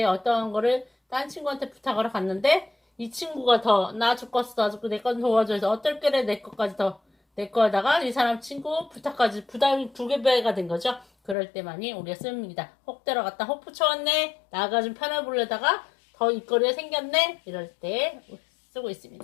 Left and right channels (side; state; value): right; drops out; at 11.4 s